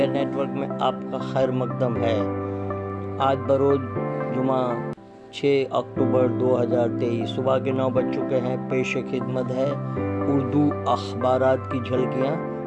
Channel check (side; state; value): both; identical; correlation 1.00